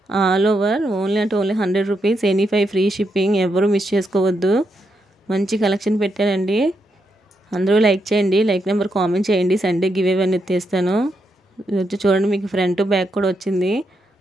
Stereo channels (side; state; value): both; normal; correlation 0.82